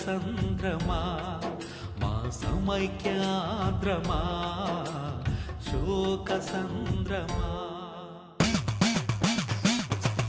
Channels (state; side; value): identical; both; correlation 1.00